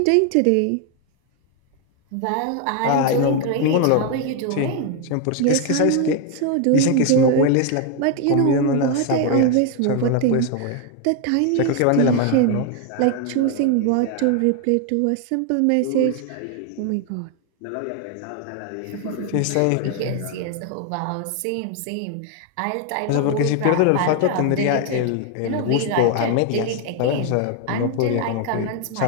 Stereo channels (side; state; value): both; different; correlation 0.01